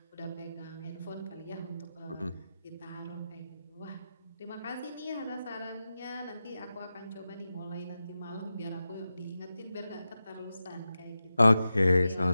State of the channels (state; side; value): inverted; both; correlation -0.92